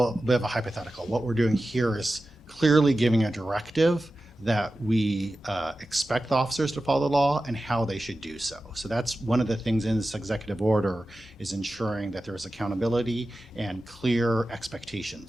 bit of a hypothetical. What we're doing here is clearly giving a directive that we expect the officers to follow the law and how they should do so. So that's one of the things in this executive order, is ensuring that there is accountability and clear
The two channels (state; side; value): normal; both; correlation 0.94